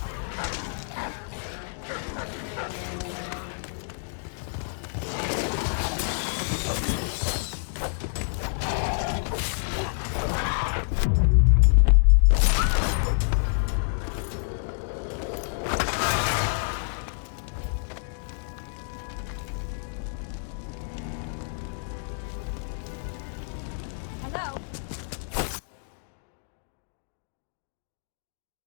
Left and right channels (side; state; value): right; silent; digital silence